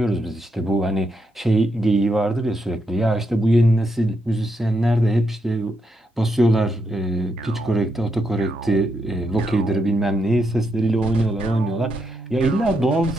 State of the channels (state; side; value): normal; both; correlation 0.81